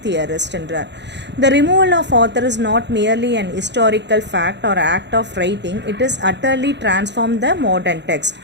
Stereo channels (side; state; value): left; late; 0.51 ms